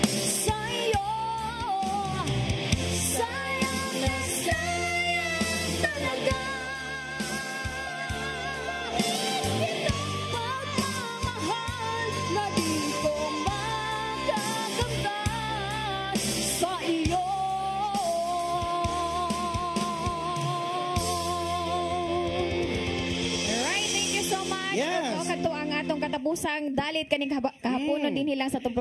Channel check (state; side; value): identical; both; correlation 1.00